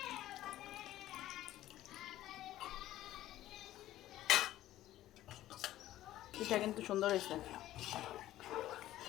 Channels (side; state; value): right; quieter; 14.2 dB